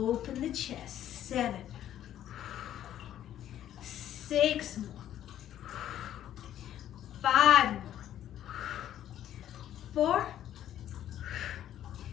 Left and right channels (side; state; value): right; quieter; 11.5 dB